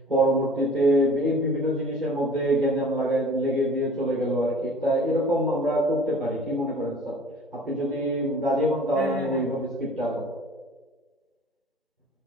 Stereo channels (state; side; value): normal; both; correlation 0.47